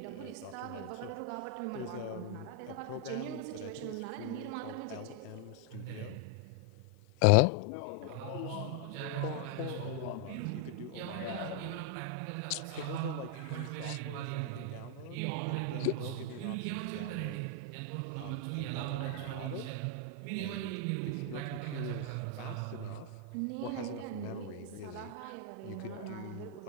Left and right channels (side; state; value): both; different; correlation 0.00